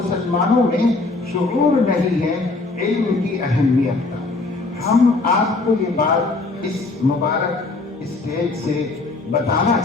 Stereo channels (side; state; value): right; quieter; 3.4 dB